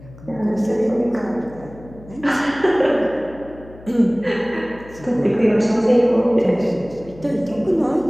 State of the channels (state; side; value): noise; left; hum, 20 dB below the sound